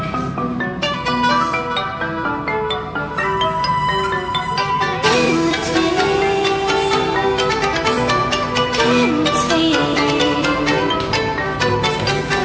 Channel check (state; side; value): identical; both; correlation 1.00